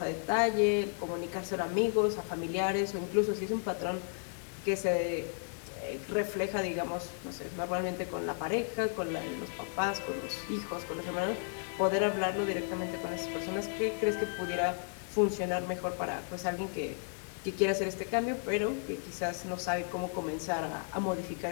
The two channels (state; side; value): silent; right; 55 dB below the other